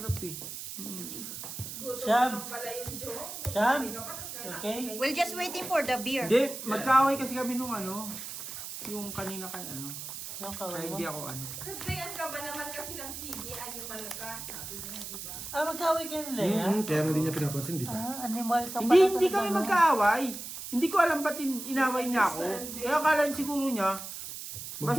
eh. Sham. Sham. Okay. We're just waiting for the beer. Hindi, magkaaway kasi kami nung ano. Yung kanina kay ano. Yung Kaya kaway mo. hindi ako ano. Kagayan ka ba naman kasi ng CD, ano malakas, sabi niya, di ba? Ah, magkaway kayo nila yan? Kaya nga hindi niya pinapansin, di ba? Ah, animal ka pala. Hindi talaga, kami no? magkaaway. Hindi ko alam ba't inaway niya ako. Kaya akala siguro niya,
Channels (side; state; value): right; noise; hiss, 8 dB below the sound